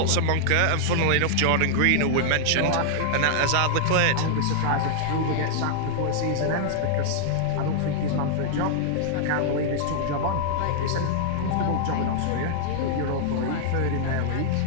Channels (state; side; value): different; both; correlation -0.01